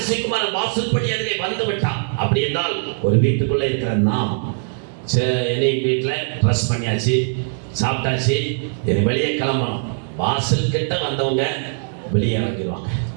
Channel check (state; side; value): silent; left; 65 dB below the other